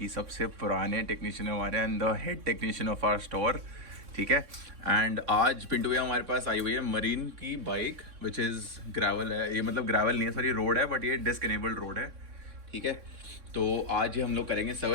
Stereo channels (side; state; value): left; late; 3.6 ms